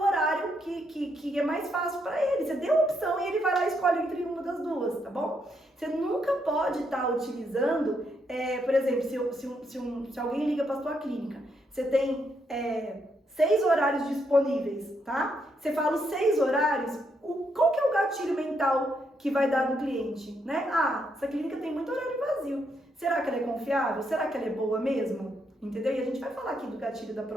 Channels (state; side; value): normal; both; correlation 0.77